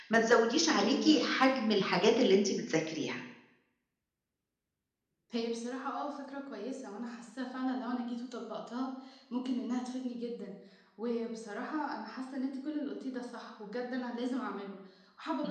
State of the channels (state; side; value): identical; both; correlation 1.00